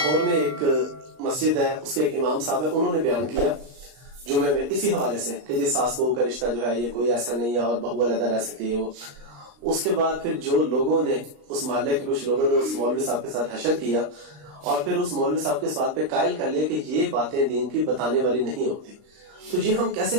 میں ایک مسجد ہے, اس کے ایک امام صاحب ہے, انہوں نے بیان کیا جمعے میں اسی حوالے سے کہ جی ساس بہو کا رشتہ جو ہے یہ کوئی ایسا نہیں ہے اور بہو علیحدہ رہ سکتی ہے. وہ اس کے بعد پھر جو لوگوں نے اس محلے کے کچھ لوگوں نے اس مولوی صاحب کے ساتھ حشر کیا اور پھر اس مولوی صاحب کے اس بات پہ قائل کر لیا کہ یہ باتیں دین کی بتانے والی نہیں ہوتی. تو یہ ہم کیسے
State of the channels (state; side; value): late; left; 39 ms